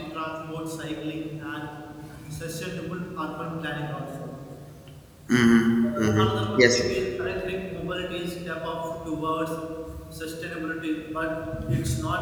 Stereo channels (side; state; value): both; identical; correlation 1.00